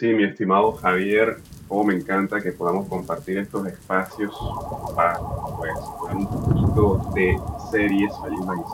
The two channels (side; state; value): both; identical; correlation 1.00